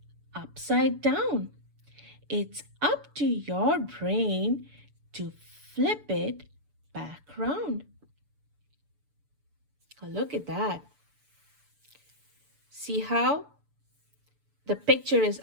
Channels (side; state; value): left; late; 6.9 ms